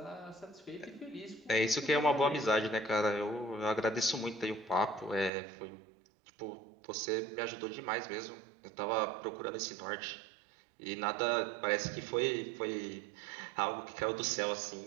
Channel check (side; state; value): left; drops out; at 5.3 s